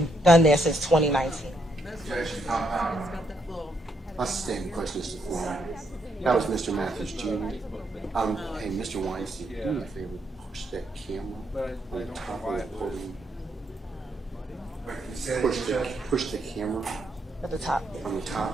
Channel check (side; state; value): both; normal; correlation 0.76